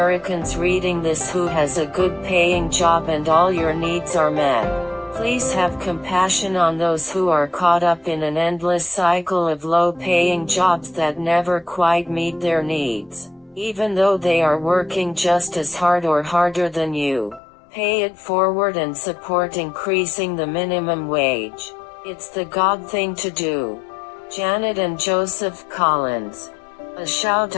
reading this who has a good paying job and all your needs are met, please have compassion on those who are caught up in an endless cycle of low-paying jobs that never quite meet their needs, even though they are working just as hard or harder than you. Pay it forward and support increasing the minimum wage. It's the God thing to do. Janet and Joseph Collins. A shout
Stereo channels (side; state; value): right; drops out; at 17.4 s